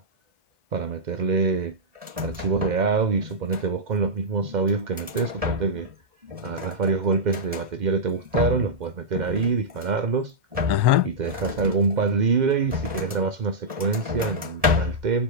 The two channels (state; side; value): late; left; 1.7 ms